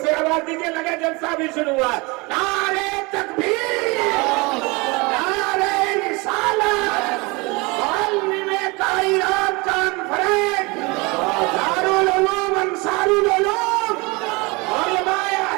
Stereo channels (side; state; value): left; quieter; 26.2 dB